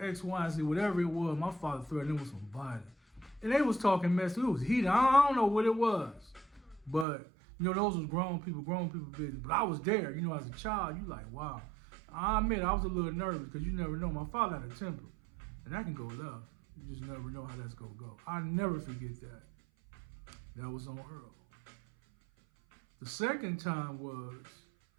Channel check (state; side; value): drops out; left; at 7.1 s